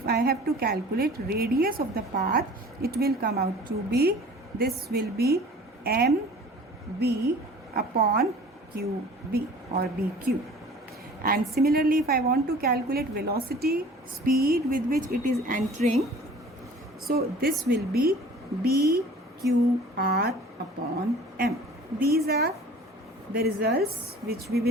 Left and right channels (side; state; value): both; normal; correlation 0.46